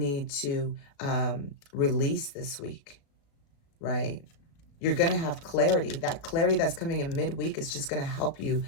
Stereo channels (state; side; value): late; right; 36 ms